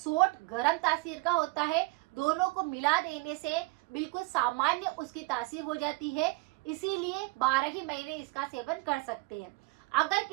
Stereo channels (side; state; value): left; quieter; 24.6 dB